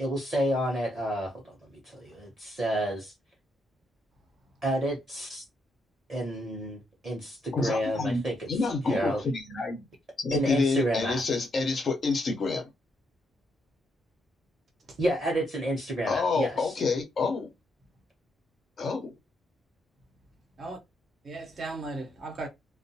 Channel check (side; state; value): both; normal; correlation 0.77